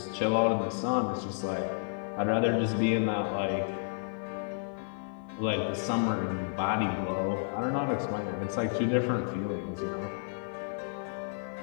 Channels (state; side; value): silent; right; 57 dB below the other